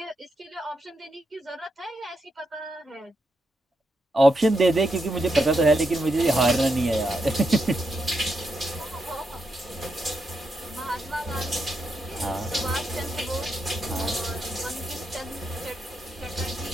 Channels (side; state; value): both; normal; correlation 0.83